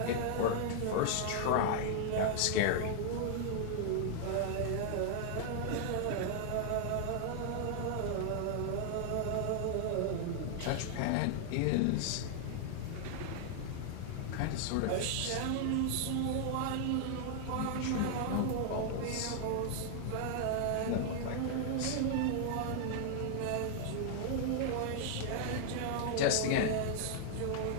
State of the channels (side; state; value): both; different; correlation 0.00